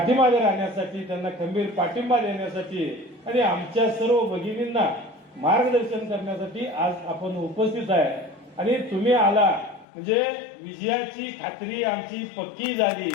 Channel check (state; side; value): drops out; right; at 9.9 s